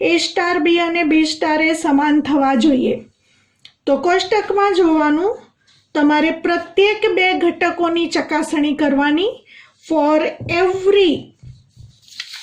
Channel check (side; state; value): both; identical; correlation 1.00